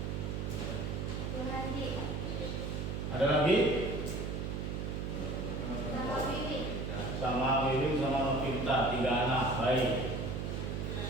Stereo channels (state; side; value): noise; right; hum, 3 dB below the sound